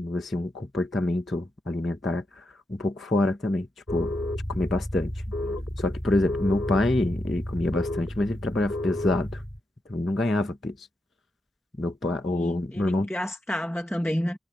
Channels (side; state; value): both; normal; correlation 0.84